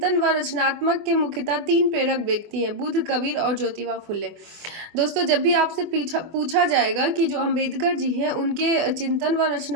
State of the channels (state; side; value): late; left; 24 ms